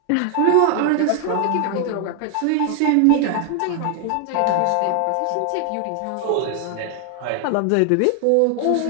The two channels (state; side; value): different; both; correlation 0.00